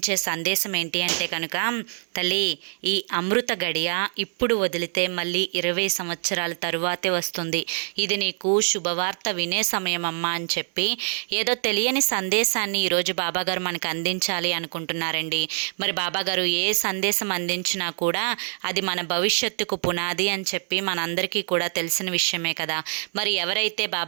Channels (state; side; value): silent; left; digital silence